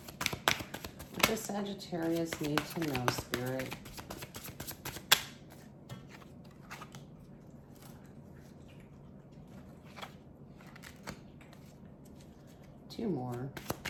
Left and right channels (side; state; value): both; identical; correlation 1.00